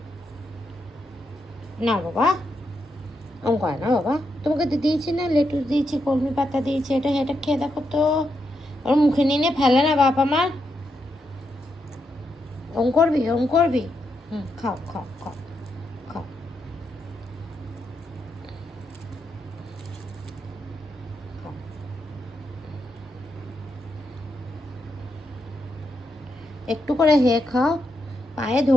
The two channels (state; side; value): normal; both; correlation 0.82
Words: না বাবা, ওম করে না বাবা। তোমাকে দিয়েছি না, লেটুস দিয়েছি, কলমি পাতা দিয়েছি, এটা এটা খেয়ে দেখো তো। ওর মুখে নিয়ে ফেলে না বাপ আমার। ওম করবি, ওম করবি। খাও খাও খাও খাও। খাও। একটু করে হে খাও। পায়ে